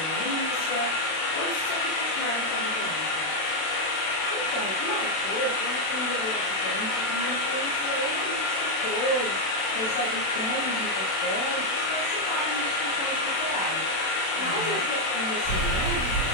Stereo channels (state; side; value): late; right; 32 ms